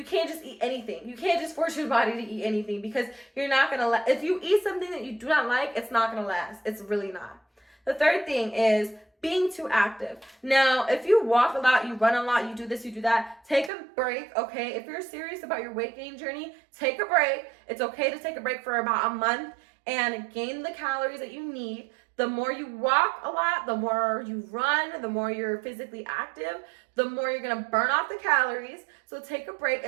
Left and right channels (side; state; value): left; drops out; at 13.7 s